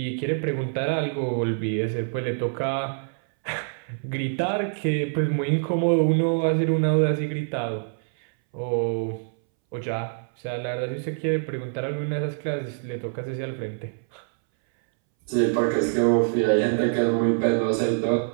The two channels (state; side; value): silent; left; 62 dB below the other